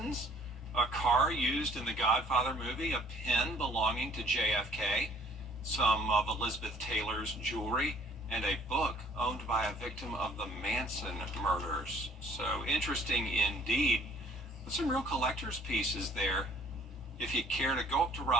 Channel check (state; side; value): normal; both; correlation 0.57